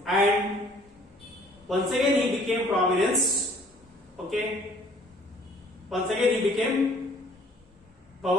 and once again he became prominence. Okay, once again he became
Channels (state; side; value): normal; both; correlation 0.57